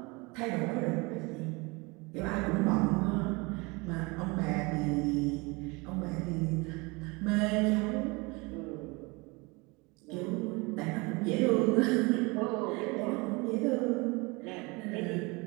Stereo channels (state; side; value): quieter; left; 26.4 dB